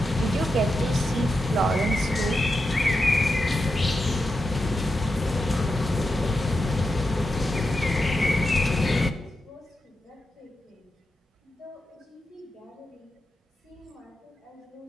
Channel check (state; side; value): normal; both; correlation 0.88